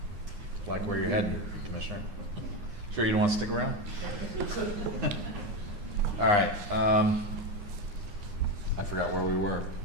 Like where you're heading, Commissioner. Sure you don't want to stick around? All right, I forgot where we were.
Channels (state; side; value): late; left; 9.7 ms